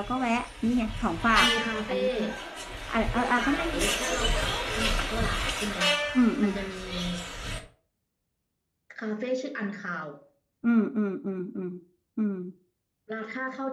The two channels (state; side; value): identical; both; correlation 1.00